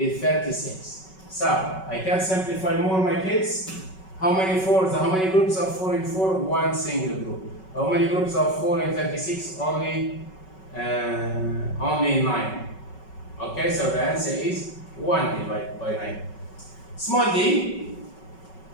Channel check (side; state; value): right; late; 5.3 ms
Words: 36. So I can simplify more, my kids. How many 4s? How many groups of 4 in 4? One single group. How many groups of 4 in 36? Only 9. Okay, so the answer is 1 divided by 9. Small d.